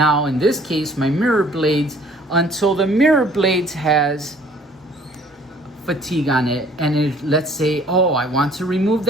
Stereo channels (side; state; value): both; normal; correlation 0.56